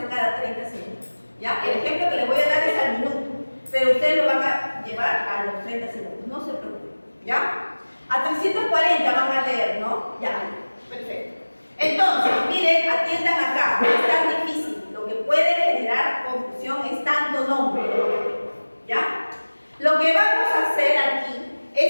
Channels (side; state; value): both; inverted; correlation -1.00